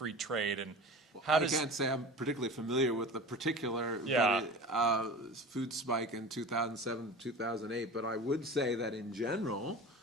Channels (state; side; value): normal; both; correlation 0.35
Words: trade and how I does... can't say I'm particularly familiar with the particular food spike in 2007 to 2008, but I would say that in general,